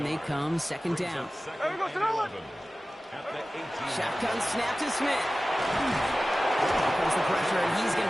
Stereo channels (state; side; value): normal; both; correlation 0.96